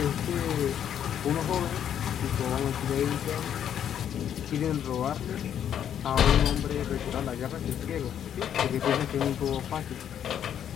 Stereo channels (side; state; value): right; quieter; 9.5 dB